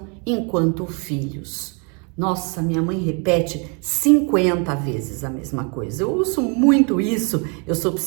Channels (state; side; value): quieter; left; 35.1 dB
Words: enquanto filhos? Nossa, minha mãe repete 50 vezes a mesma coisa. Eu ouço muito isso, eu sou